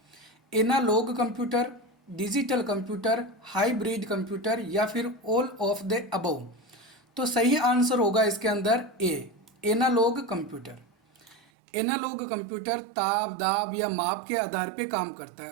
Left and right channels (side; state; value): left; drops out; at 11.4 s